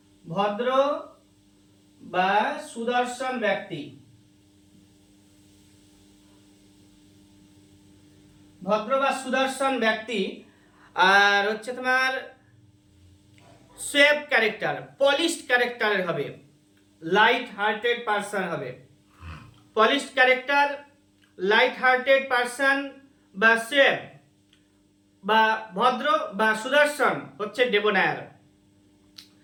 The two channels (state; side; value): identical; both; correlation 1.00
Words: ভদ্র বা সুদর্শন ব্যক্তি, ভদ্র বা সুদর্শন ব্যক্তি। আর হচ্ছে তোমার সেফ ক্যারেক্টার, পলিশড ক্যারেক্টারের হবে, লাইট হার্টেড পারসন হবে। Polished character, light hearted person বা সেফ বা ভদ্র বা সুদর্শন হচ্ছে ডেবনায়ার।